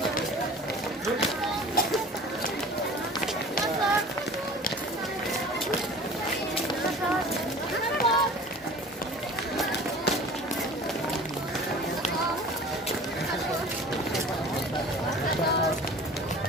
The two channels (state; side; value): normal; both; correlation 0.42